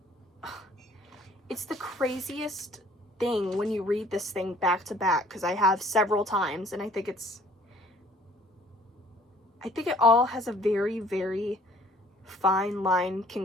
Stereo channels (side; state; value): both; normal; correlation 0.56